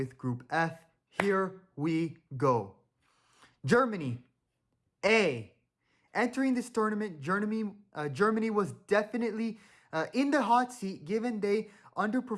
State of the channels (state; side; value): identical; both; correlation 1.00